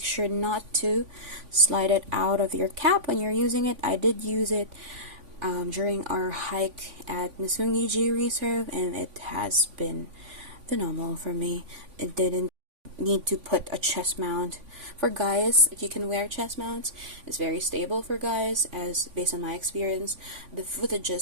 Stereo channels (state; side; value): late; left; 3.5 ms